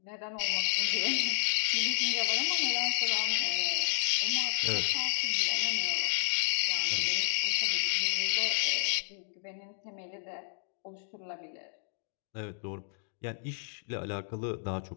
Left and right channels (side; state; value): right; silent; 57 dB below the other